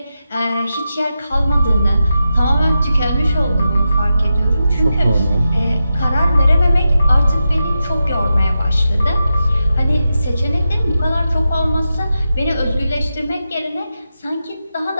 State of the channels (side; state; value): both; inverted; correlation -0.89